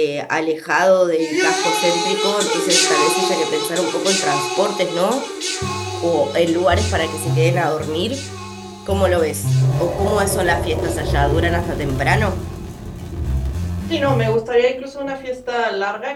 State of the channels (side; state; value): both; identical; correlation 1.00